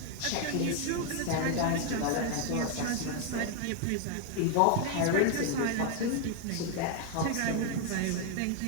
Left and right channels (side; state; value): both; different; correlation 0.01